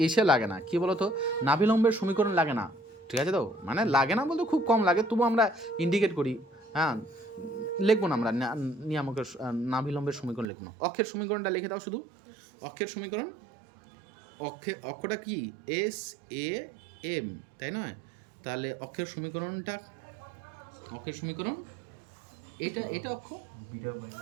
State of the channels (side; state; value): left; drops out; at 10.5 s